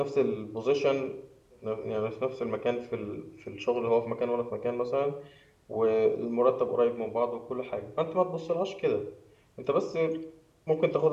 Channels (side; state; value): both; identical; correlation 1.00